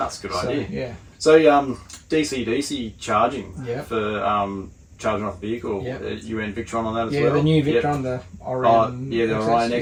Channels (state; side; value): identical; both; correlation 1.00